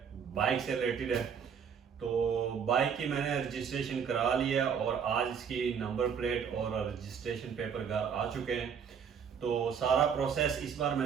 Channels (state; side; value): quieter; left; 7.1 dB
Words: बाइक से रिलेटेड है। तो बाइक की मैंने रजिस्ट्रेशन करा लिया और आज इसकी नंबर प्लेट और रजिस्ट्रेशन पेपर घर आ चुके हैं। तो सारा प्रोसेस इस बार